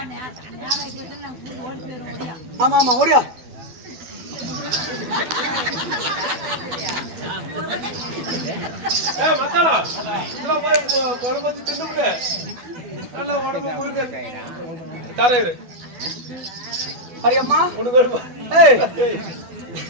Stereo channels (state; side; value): late; left; 12 ms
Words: ஆமா ஆமா ஓடியா. மத்தாளா இதெல்லாம் போய் குழம்பு தின்னு நல்லா உடம்பு முழுக்க தரையிரு. அரியம்மா உனக்கு வருமா?